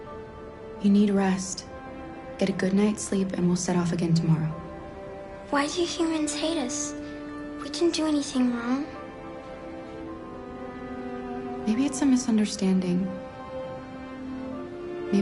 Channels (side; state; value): both; identical; correlation 1.00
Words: You need rest. Get a good night's sleep and we'll set off again tomorrow. Why do humans hate us? We didn't do anything wrong. Maybe it's a misunderstanding.